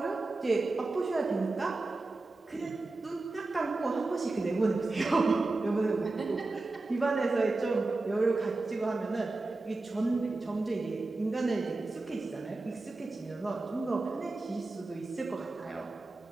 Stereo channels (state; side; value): quieter; left; 3.3 dB